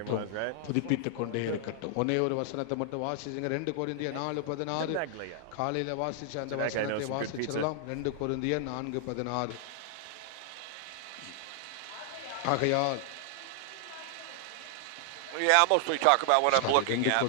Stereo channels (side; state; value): both; different; correlation 0.00